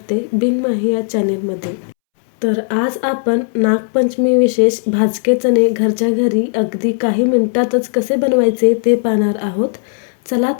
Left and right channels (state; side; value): silent; right; 69 dB below the other